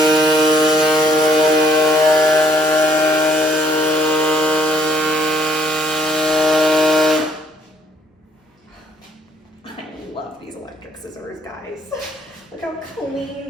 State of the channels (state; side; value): normal; both; correlation 0.66